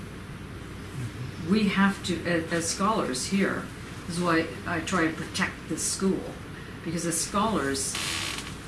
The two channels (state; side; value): identical; both; correlation 1.00